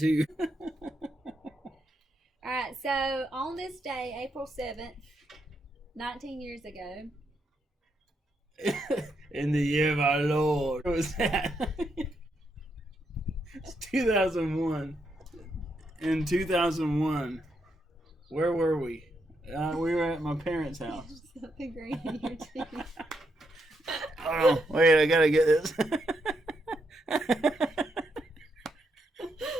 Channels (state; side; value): normal; both; correlation 0.80